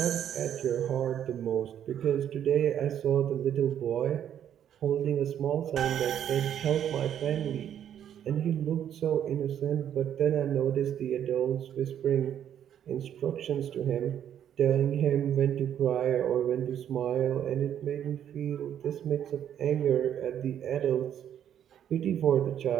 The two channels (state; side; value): quieter; left; 9.8 dB